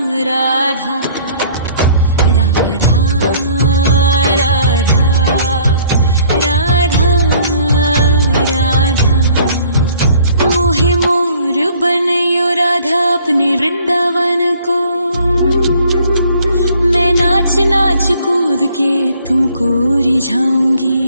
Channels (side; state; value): both; inverted; correlation -0.56